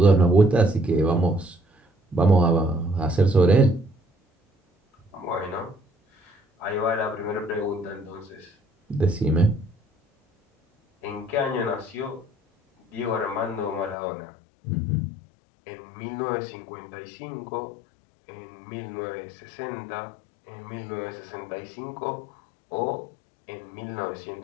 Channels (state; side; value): drops out; right; at 14.0 s